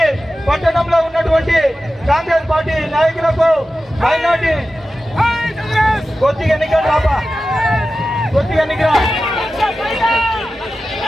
పట్టణంలో ఉన్నటువంటి కాంగ్రెస్ పార్టీ నాయకులకు మైనార్టీ కొద్దిగా ఎన్నికలు రాపా కొద్దిగా ఎన్నికల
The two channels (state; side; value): normal; both; correlation 0.94